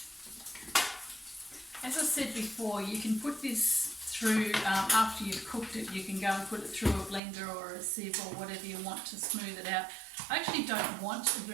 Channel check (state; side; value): drops out; left; at 7.2 s